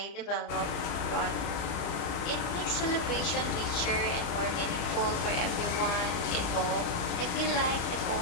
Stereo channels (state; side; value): late; right; 34 ms